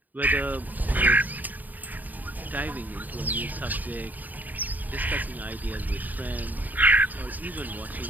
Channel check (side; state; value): left; late; 0.083 ms